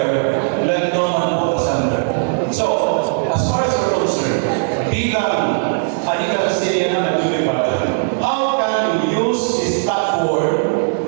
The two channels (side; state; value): left; silent; digital silence